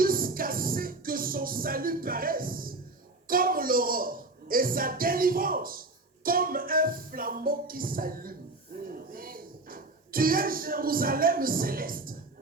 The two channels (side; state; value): left; quieter; 3.1 dB